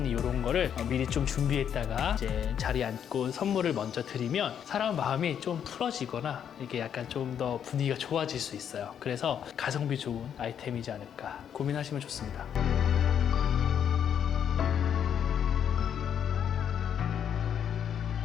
이런 거를 미리 좀 준비했다가 이제 자리에 앉고 선물을 먼저 드리면 사람 마음이 좀 풀어지거나 이게 약간 좀 더 분위기가 좋아질 수 있어요. 그래서 가성비 좋은 아이템이지 않을까 고민하시면 좋습니다.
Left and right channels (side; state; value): right; quieter; 8.7 dB